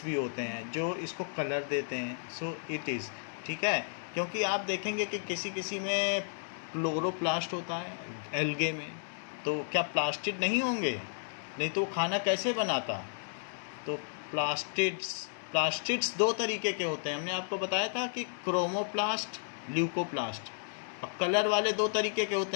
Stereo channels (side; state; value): right; silent; 56 dB below the other